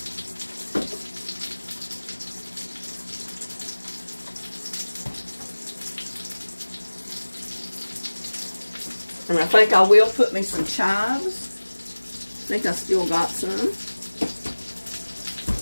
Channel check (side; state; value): both; inverted; correlation -1.00